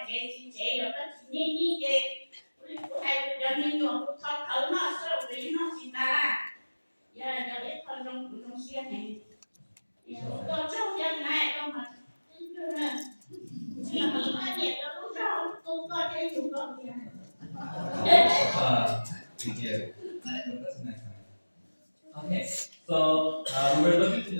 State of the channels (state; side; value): inverted; both; correlation -1.00